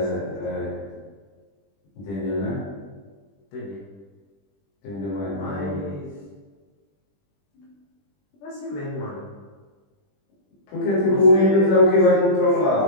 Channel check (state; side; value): late; right; 20 ms